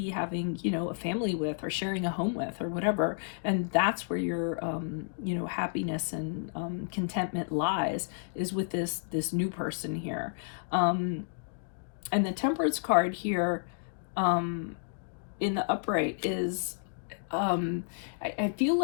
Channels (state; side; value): silent; right; digital silence